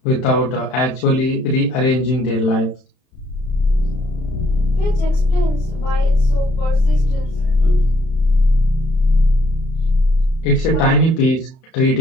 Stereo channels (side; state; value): right; late; 31 ms